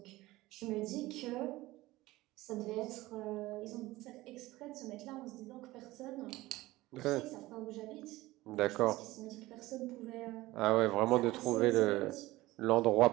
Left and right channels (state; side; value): quieter; left; 18.5 dB